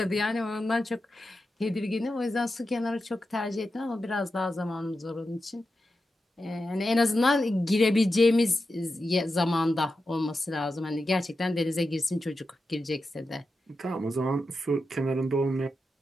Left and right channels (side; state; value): both; normal; correlation 0.90